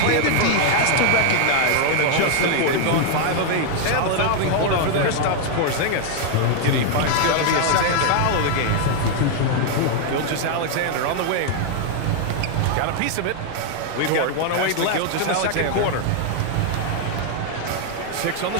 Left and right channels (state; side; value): different; both; correlation 0.00